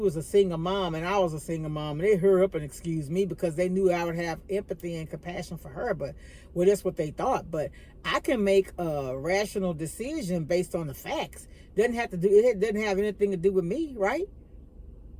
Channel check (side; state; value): both; identical; correlation 1.00